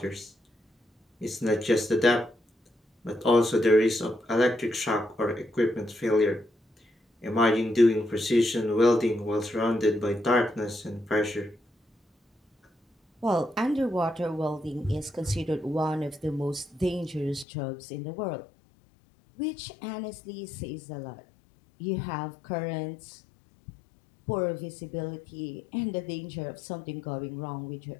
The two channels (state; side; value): drops out; right; at 17.4 s